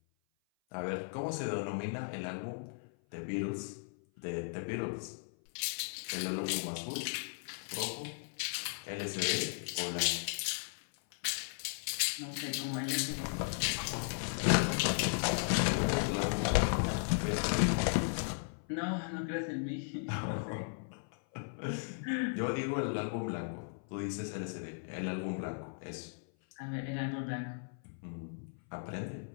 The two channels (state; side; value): silent; right; 54 dB below the other